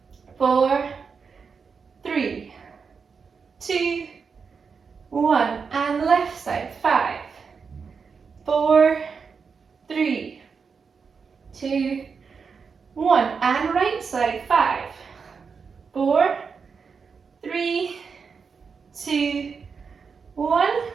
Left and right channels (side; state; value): left; quieter; 5.6 dB